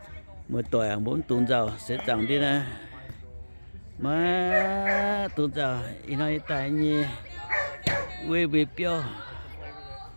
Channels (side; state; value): both; inverted; correlation -1.00